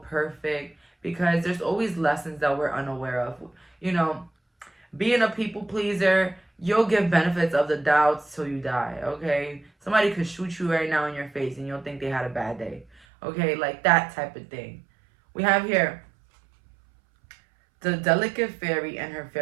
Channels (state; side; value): drops out; left; at 13.0 s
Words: perfect because there's always lessons that we're unaware of. You know, being a people pleaser, you'll give benefits of the doubt till you die, okay? Somebody could shoot you right now in your face and you'll think they had a bad day, okay? Like that type of thing. We have here the delicate fairy and her